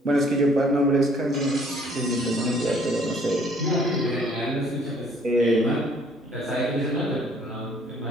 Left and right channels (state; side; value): normal; both; correlation 0.60